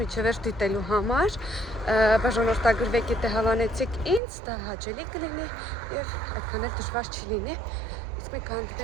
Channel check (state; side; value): drops out; left; at 4.2 s